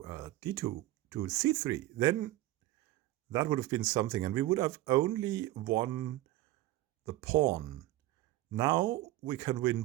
d2 to c3. Then that would have been something. And we would have only won the pawn. Now we can win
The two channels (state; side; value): quieter; left; 16.2 dB